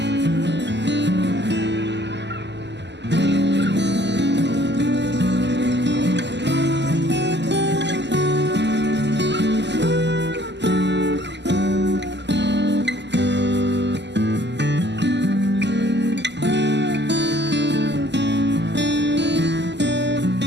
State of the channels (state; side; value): late; left; 0.51 ms